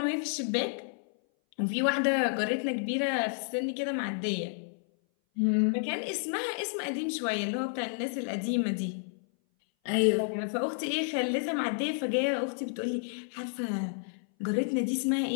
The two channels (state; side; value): silent; right; 57 dB below the other